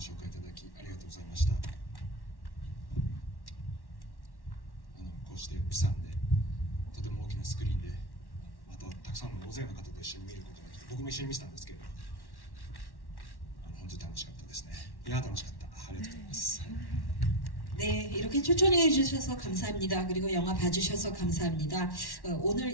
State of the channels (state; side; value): late; right; 1.1 ms